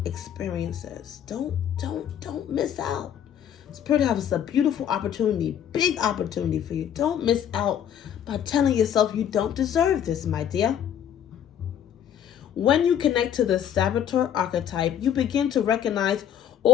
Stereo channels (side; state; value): right; quieter; 9.4 dB